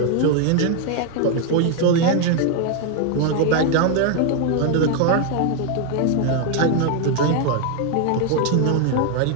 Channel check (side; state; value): both; different; correlation 0.01